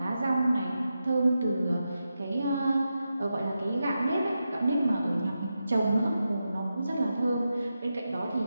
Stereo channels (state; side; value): inverted; both; correlation -0.89